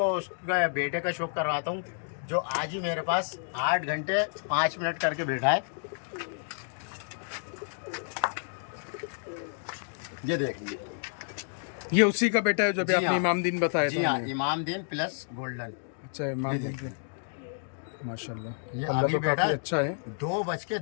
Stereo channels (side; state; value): right; silent; digital silence